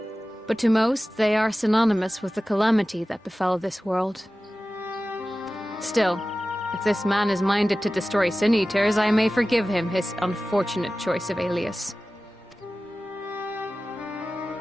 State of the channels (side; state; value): both; normal; correlation 0.96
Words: But to most, they are synonymous with the calamity that befell this world. Still, if this man is minded to destroy Sin-Eaters, I may forgive him his unfortunate choice of alias.